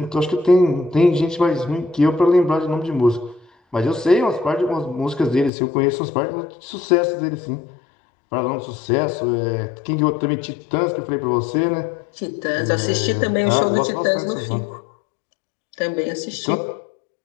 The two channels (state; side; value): drops out; right; at 5.5 s